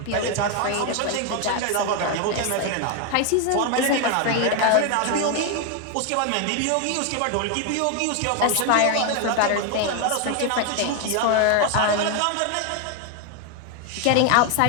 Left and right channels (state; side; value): different; both; correlation 0.01